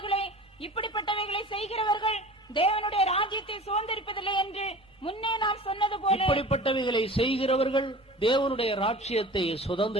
இப்படிப்பட்டவைகளை செய்கிறவர்கள் தேவனுடைய ராஜ்யத்தை சுதந்தரிப்பதில்லை என்று முன்னே நாம் சொன்னது போல இப்படிப்பட்டவைகளை செய்கிறவர்கள் தேவனுடைய ராஜ்யத்தை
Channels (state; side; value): normal; both; correlation 0.39